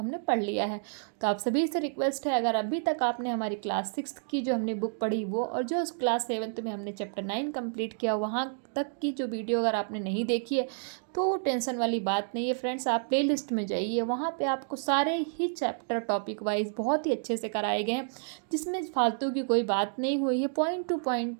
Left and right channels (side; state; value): left; silent; digital silence